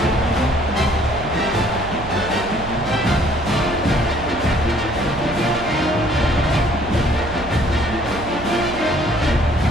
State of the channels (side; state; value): right; noise; hum, 12 dB below the sound